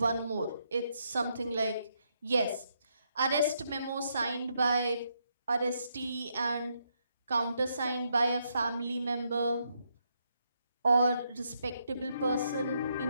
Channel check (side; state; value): both; inverted; correlation -0.78